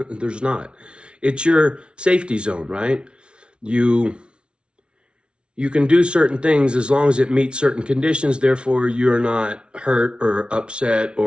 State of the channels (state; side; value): late; left; 0.057 ms